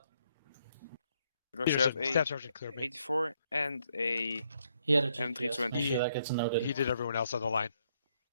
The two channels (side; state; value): both; inverted; correlation -0.74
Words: Because you have Peterson, Staff Sergeant cleared me. 84 and a He had a M320. Make sure that gets noted. He did everyone else on the line.